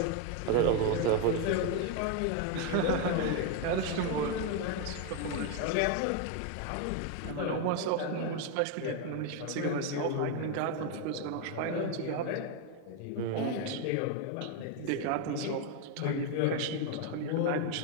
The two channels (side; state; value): both; different; correlation 0.01